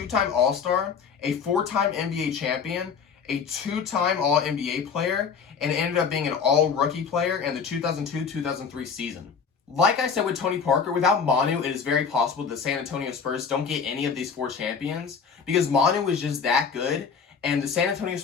All-Star, a 4-time NBA champion, a 2-time All-NBA player, and ended up being an All-Rookie player in the 2002-2003 season. Like I said with Tony Parker, without Manu, it is very possible that the San Antonio Spurs don't get any of these 4 champions because Manu was just that good, and the San Antonio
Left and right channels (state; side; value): quieter; right; 6.1 dB